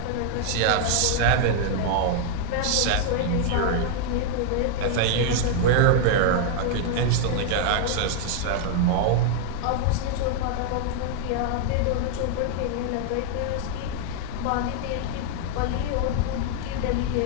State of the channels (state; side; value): different; both; correlation 0.00